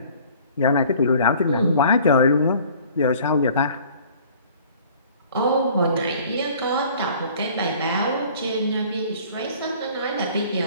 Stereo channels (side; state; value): both; inverted; correlation -0.51